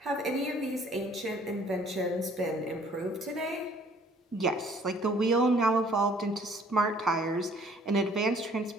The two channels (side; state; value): both; normal; correlation 0.57